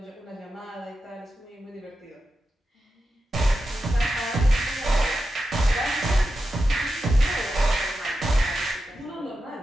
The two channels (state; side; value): normal; both; correlation 0.90